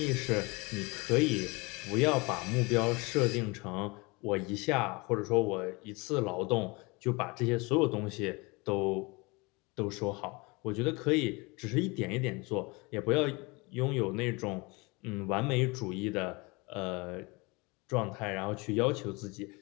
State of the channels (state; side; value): quieter; right; 26.5 dB